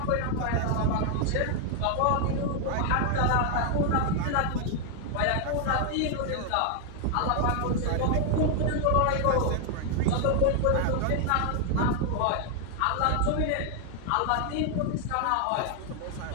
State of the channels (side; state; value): both; different; correlation 0.00